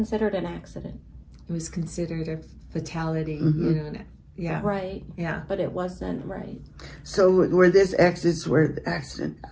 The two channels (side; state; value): both; identical; correlation 1.00